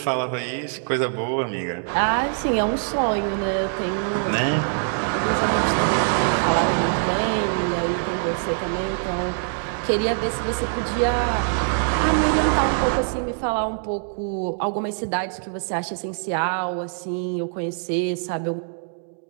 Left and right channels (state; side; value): silent; left; digital silence